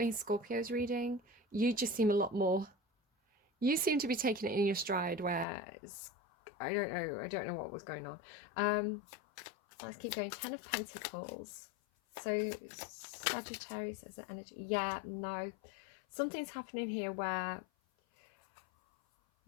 Scorpio's reading. You just seem a lot more, you seem to be taking it in your stride, where I don't know what was going on. Let's keep going. Ten of Pentacles. So Sagittarius as an energy. Yeah, no. Something's happening here where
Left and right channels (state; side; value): drops out; right; at 5.5 s